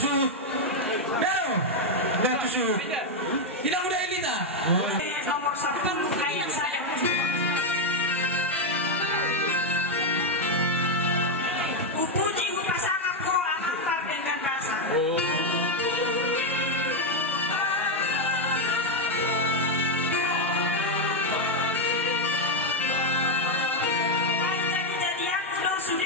Pero, nggak tusuk. Tidak mudah ini tak? Nomor 1 kayak saya. Puji pasangan ko ang antar dengan rasa. Jadi-jadian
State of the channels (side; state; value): both; normal; correlation 0.02